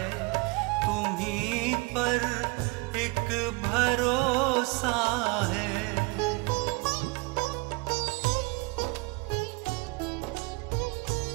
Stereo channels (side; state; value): left; quieter; 27.6 dB